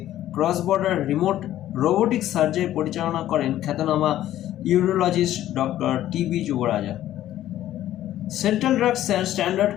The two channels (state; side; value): quieter; right; 13.0 dB